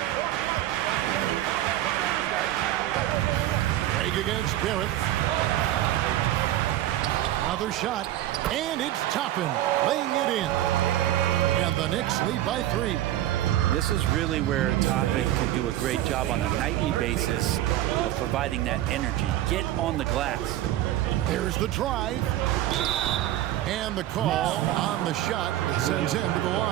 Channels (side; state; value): left; quieter; 13.7 dB